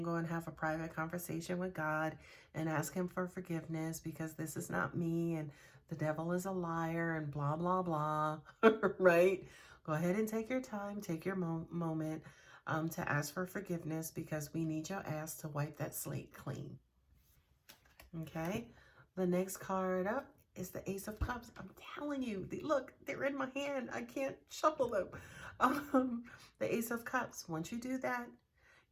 go and have a private conversation with God and ask him for forgiveness because this is not me and the devil is a liar and blah, blah, blah, right? Go ahead and take your time, take your moment to ask for forgiveness because we need your ass to wipe that slate clean. Okay, the next card up is the Ace of Cups. I'm telling you, look, they're in my hand. I can't shuffle them. The Ace of Cups, once you do that,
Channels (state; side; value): identical; both; correlation 1.00